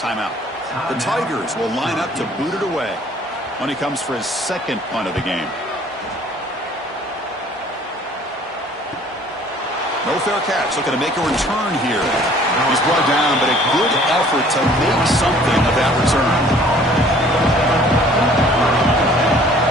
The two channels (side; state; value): both; normal; correlation 0.54